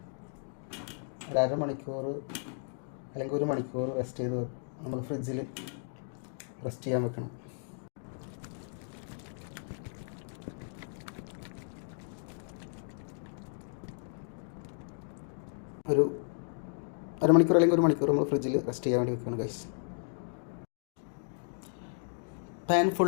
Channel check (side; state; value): right; silent; digital silence